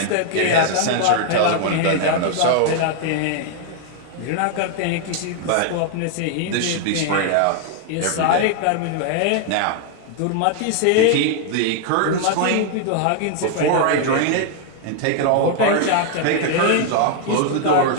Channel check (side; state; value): both; different; correlation 0.00